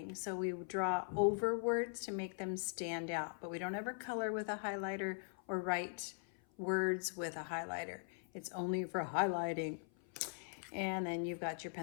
so we draw over words to make them stand out, but we don't ever color with a highlighter or write words with a highlighter. It's only for highlighting. And then you've got your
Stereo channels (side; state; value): right; silent; 50 dB below the other